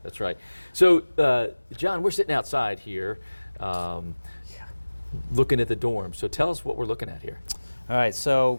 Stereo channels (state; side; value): inverted; both; correlation -1.00